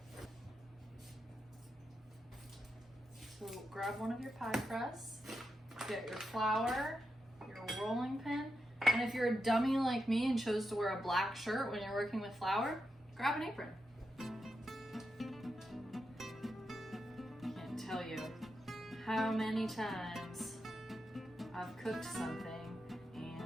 So grab one of your pie crusts, get your flour, your rolling pin, and if you're a dummy like me and chose to wear a black shirt when you're working with flour, grab an apron. Can't tell you how many times I've cooked something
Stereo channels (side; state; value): both; normal; correlation 0.86